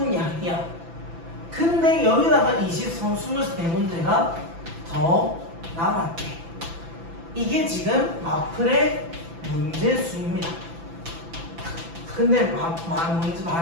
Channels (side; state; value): left; late; 6.0 ms